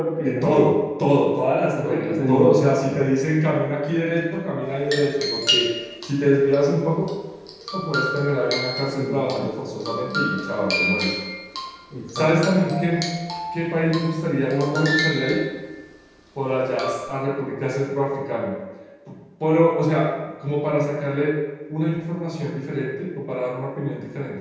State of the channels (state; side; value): identical; both; correlation 1.00